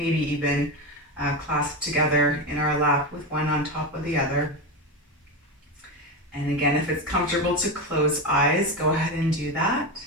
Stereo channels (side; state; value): both; normal; correlation 0.17